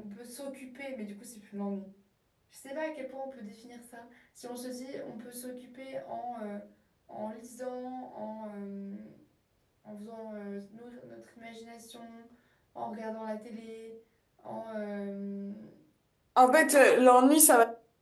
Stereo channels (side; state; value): both; identical; correlation 1.00